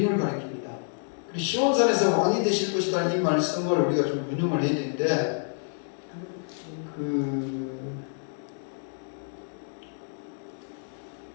가리킵니다. 그리고 시온산에서 왕이 되실 것이다 이 말씀을 우리가 좀 운용을 해야 되는데 그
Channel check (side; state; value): right; silent; 59 dB below the other